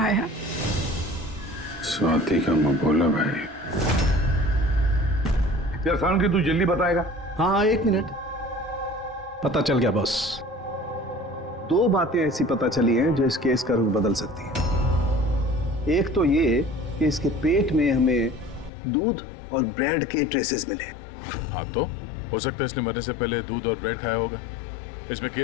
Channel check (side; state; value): right; drops out; at 18.7 s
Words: स्वाति का मबोला भाई। यार साउंड की तू जल्दी बताएगा? हाँ, 1 मिनट। पता चल गया बॉस। 2 बातें ऐसी पता चली हैं जो इस केस का रुख बदल सकती हैं। एक तो ये कि इसके पेट में हमें दूध और ब्रेड के ट्रेसेस मिले। हाँ, तो हो सकता है इसने मरने से पहले दूध और ब्रेड खाया होगा। इसमें